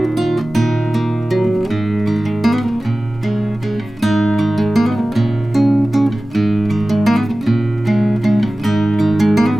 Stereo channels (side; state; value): both; normal; correlation 0.97